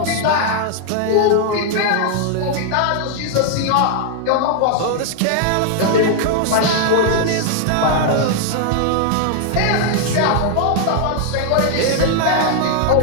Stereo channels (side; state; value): both; different; correlation 0.00